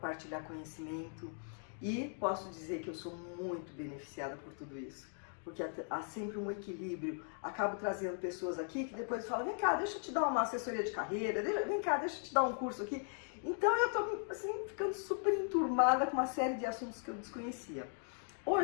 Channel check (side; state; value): right; silent; 52 dB below the other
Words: conhecimento. E posso dizer que eu sou muito beneficiada por tudo isso, porque há sempre um equilíbrio. Acabo trazendo pessoas aqui que depois falam: vem cá, deixa eu te dar uma assessoria de carreira, vem cá, deixa eu te dar um curso aqui. Então eu estou assim, ficando super enturmada com uma série de assuntos que eu desconhecia.